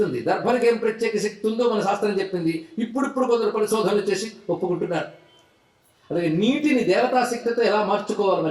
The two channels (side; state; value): both; identical; correlation 1.00